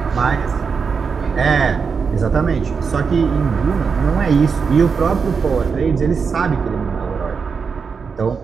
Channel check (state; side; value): quieter; left; 5.6 dB